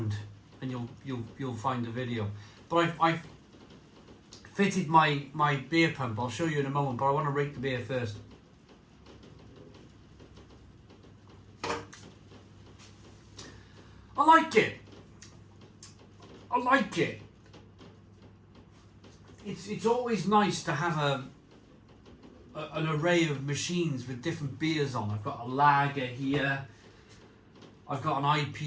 and you'll find the video. But I've fitted my beer pump. I'll show you in a moment, but I want to rate the beer first. I like it. I like it. It's always nice to have an array of machines with different beers on. I've got a lager here. I've got an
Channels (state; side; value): identical; both; correlation 1.00